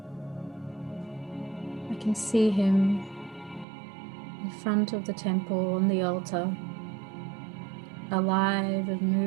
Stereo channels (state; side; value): drops out; left; at 3.7 s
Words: I can see him in front of the temple on the altar, alive and